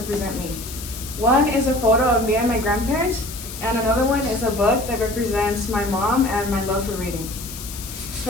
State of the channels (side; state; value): left; noise; hiss, 11 dB below the sound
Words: me. One is a photo of me and my grandparents, and another one is a book that represents my mom and my love for reading.